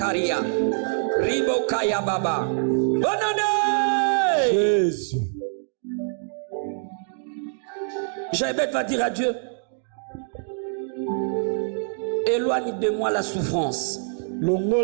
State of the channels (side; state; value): left; silent; digital silence